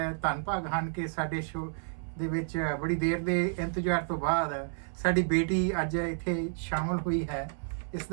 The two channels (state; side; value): silent; left; 57 dB below the other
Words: ਧੰਨ ਭਾਗ ਹਨ ਕਿ ਸਾਡੇ ਸ਼ੋਅ ਦੇ ਵਿੱਚ ਬੜੀ ਦੇਰ ਦੇ ਇੰਤਜ਼ਾਰ ਤੋਂ ਬਾਅਦ ਸਾਡੀ ਬੇਟੀ ਅੱਜ ਇੱਥੇ ਸ਼ਾਮਲ ਹੋਈ ਹੈ। ਇਸ